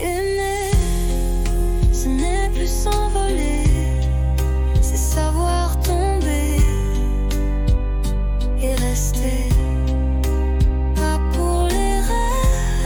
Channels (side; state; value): both; identical; correlation 1.00